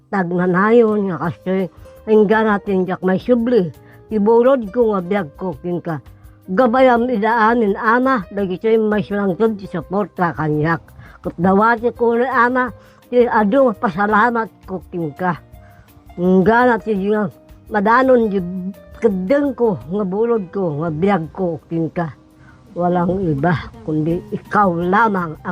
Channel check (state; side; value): identical; both; correlation 1.00